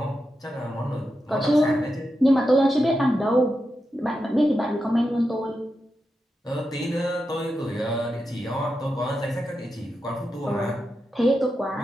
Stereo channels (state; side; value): normal; both; correlation 0.88